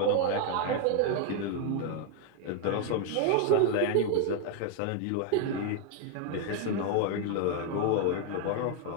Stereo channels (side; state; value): both; different; correlation 0.01